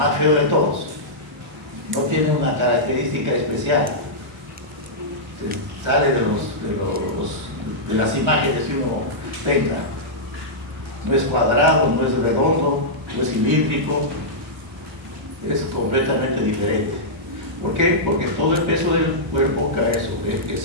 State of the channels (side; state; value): both; normal; correlation -0.11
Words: feo de todos. No tiene una característica especial. Se sale de las imágenes que uno tenga. No es cuadrado, no es redondo, no es cilíndrico, es completamente diferente. ¿Por qué? Porque todo el peso del cuerpo cae sobre